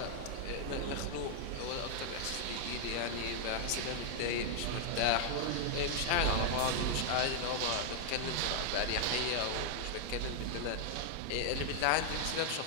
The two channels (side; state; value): both; different; correlation 0.00